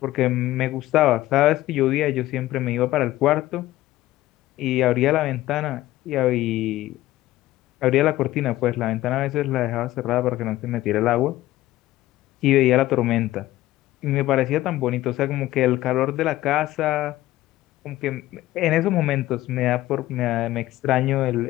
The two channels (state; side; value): quieter; right; 15.9 dB